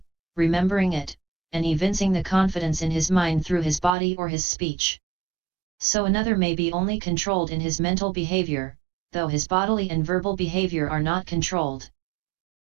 remembering it, and evincing the confidence in his mind through his body or his speech. So another may be only controlled in his mental behavior, though his bodily and verbal behavior are not controlled.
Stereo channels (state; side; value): drops out; left; at 4.0 s